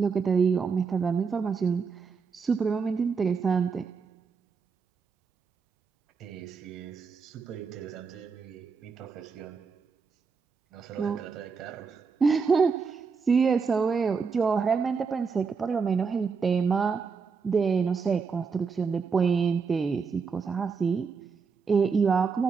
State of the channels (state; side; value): quieter; left; 5.4 dB